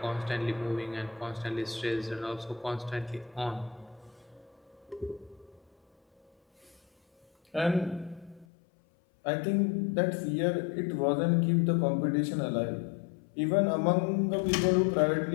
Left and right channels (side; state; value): right; drops out; at 8.5 s